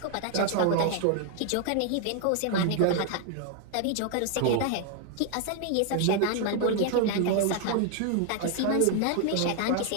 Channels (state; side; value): different; both; correlation 0.00